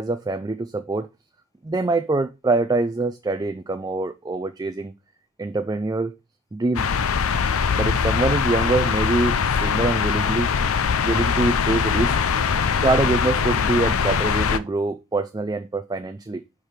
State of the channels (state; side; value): normal; both; correlation 0.49